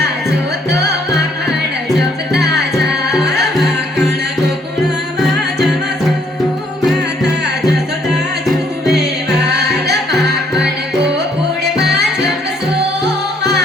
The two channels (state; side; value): normal; both; correlation 0.67